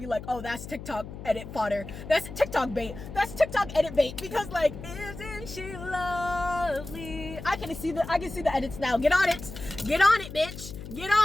like, oh, that's TikTok edit fodder. That's TikTok bait. That's TikTok edit bait. Because, like, isn't she lovely? I can see the edits now. Get on it, bitch. Get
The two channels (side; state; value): left; noise; hum, 11 dB below the sound